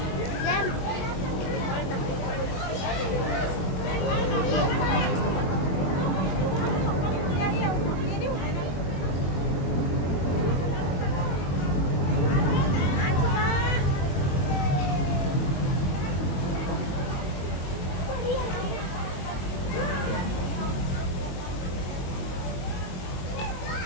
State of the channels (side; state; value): right; late; 22 ms